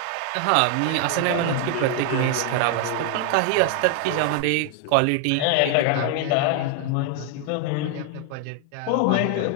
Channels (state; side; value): different; both; correlation 0.00